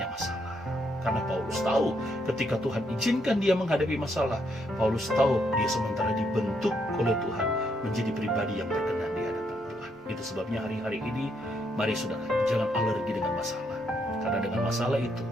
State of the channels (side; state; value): both; normal; correlation 0.75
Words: masalah. Karena Paulus tahu ketika Tuhan izinkan dia menghadapi masalah, Paulus tahu dia sementara dibentuk oleh Tuhan menjadi pribadi yang berkenan di hadapan Tuhan. Itu sebabnya hari-hari ini, mari saudara, jangan alergi dengan masalah. Karena dengan masalah itu,